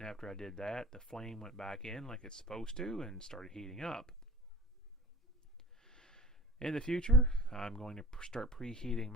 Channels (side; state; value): both; normal; correlation 0.38